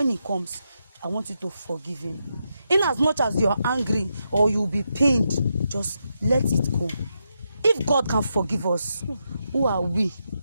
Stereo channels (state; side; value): inverted; both; correlation -0.84